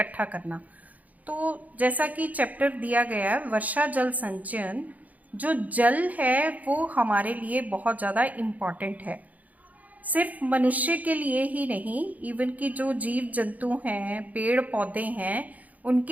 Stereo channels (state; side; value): late; left; 0.076 ms